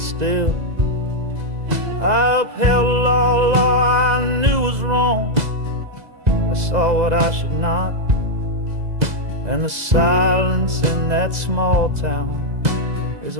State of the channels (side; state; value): left; late; 2.0 ms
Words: I upheld a law I knew was wrong. I saw what I should not, and the silence in that small town is